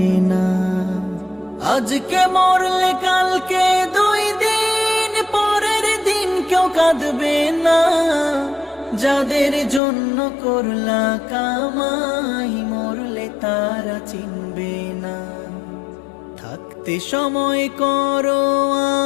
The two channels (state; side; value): drops out; right; at 9.8 s